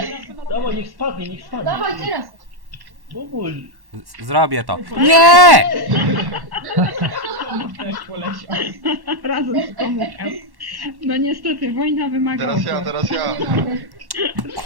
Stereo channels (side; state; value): left; late; 1.1 ms